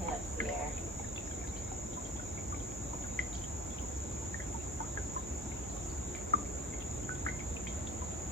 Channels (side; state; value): both; normal; correlation 0.43